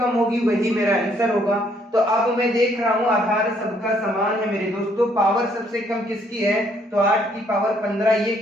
होगी वही मेरा आंसर होगा। तो अब मैं देख रहा हूं आधार सबका समान है मेरे दोस्तों, पावर सबसे कम किसकी है, तो 8 की पावर 15, ये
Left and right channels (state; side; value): normal; both; correlation 0.67